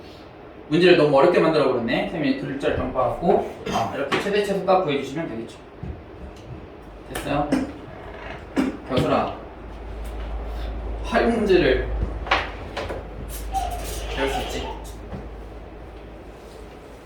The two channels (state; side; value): identical; both; correlation 1.00